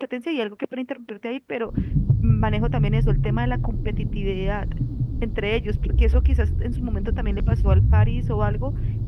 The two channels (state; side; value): identical; both; correlation 1.00